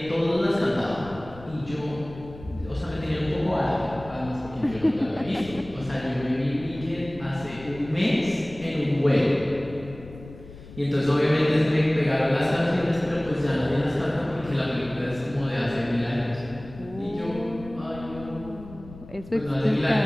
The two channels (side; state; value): left; noise; rumble, 17 dB below the sound